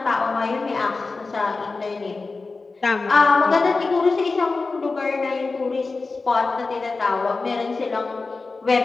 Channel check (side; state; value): right; quieter; 3.9 dB